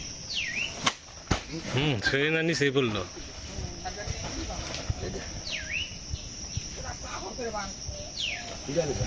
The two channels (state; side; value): identical; both; correlation 1.00